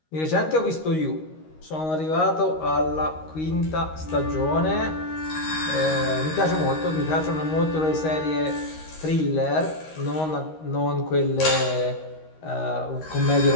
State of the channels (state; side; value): late; right; 13 ms